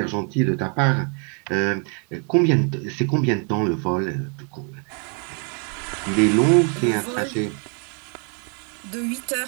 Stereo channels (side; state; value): left; quieter; 38.4 dB